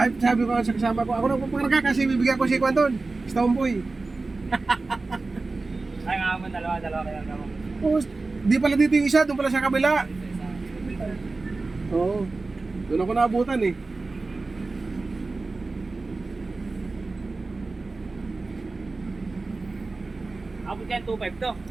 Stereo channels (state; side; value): quieter; left; 3.6 dB